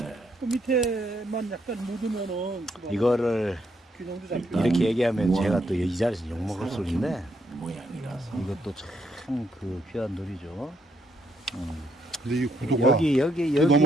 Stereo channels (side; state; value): both; normal; correlation 0.75